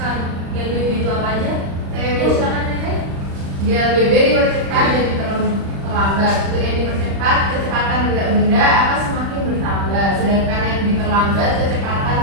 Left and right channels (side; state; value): left; late; 35 ms